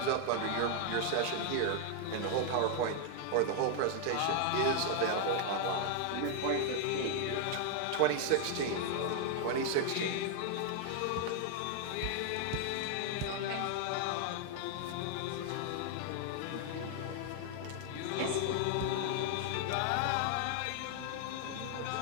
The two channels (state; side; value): different; both; correlation 0.00